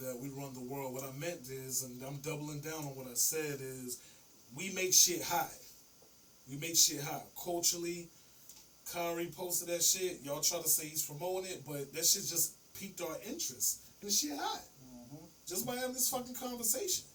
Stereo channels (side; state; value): both; normal; correlation 0.96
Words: we run the world. What I meant is, and I'm doubling down on what I said, is we make shit hot. We make shit hot. Culturally, Kyrie posted that shit. Y'all try to say he's promoting it, but that shit just piqued our interest. And the shit hot. Just by having this fucking conversation.